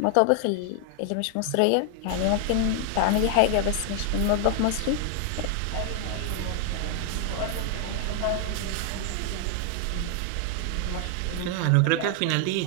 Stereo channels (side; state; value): both; different; correlation 0.00